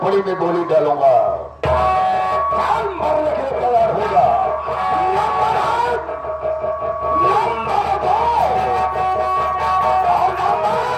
में गोली डालूंगा। मरने के लिए तैयार होगा।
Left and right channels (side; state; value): both; identical; correlation 1.00